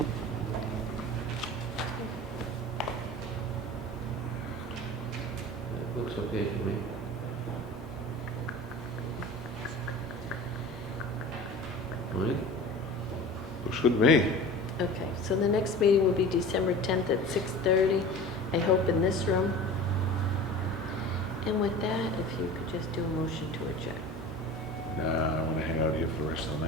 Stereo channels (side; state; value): both; normal; correlation 0.37